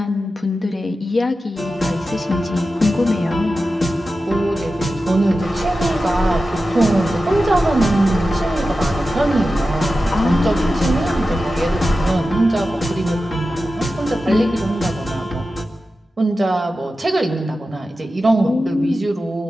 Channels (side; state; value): both; normal; correlation 0.93